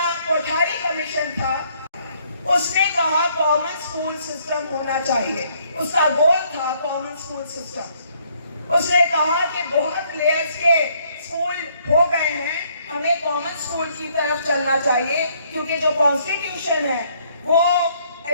कोठारी कमीशन था उसने कहा कॉमन स्कूल सिस्टम होना चाहिए, उसका गोल था कॉमन स्कूल सिस्टम। उसने कहा कि बहुत लेयर्स के स्कूल हो गए हैं, हमें कॉमन स्कूल की तरफ चलना चाहिए, क्योंकि जो कॉन्स्टिट्यूशन है वो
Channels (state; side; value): inverted; both; correlation -0.66